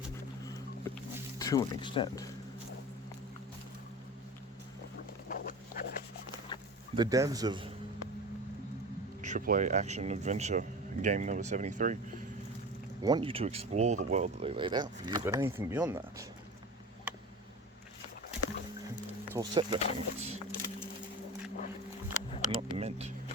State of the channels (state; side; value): normal; both; correlation 0.31